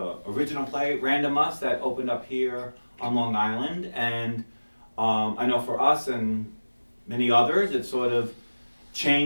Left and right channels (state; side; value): inverted; both; correlation -1.00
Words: play Random Reprise that opened up here on Long Island, and I know for us and many others it sort of